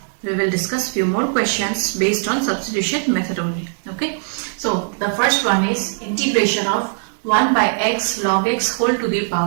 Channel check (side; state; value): left; silent; 66 dB below the other